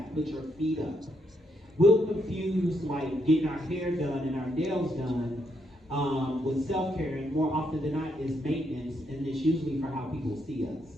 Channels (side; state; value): both; normal; correlation 0.77